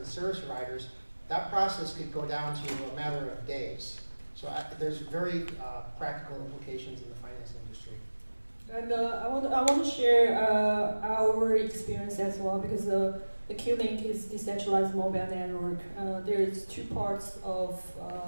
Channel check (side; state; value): both; inverted; correlation -1.00